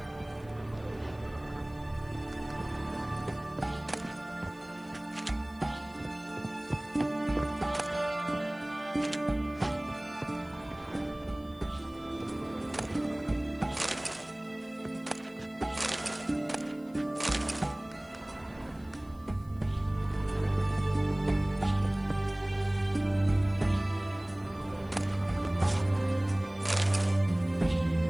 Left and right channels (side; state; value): left; noise; hiss, 29 dB below the sound